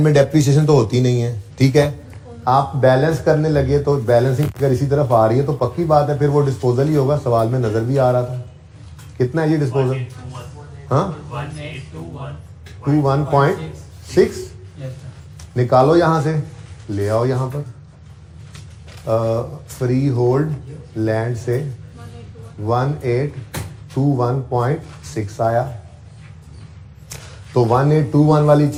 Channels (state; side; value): identical; both; correlation 1.00